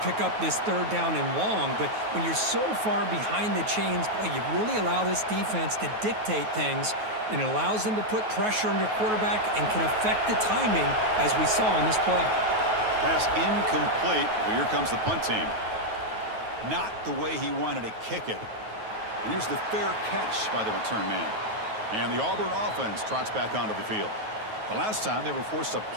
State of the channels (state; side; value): late; left; 9.3 ms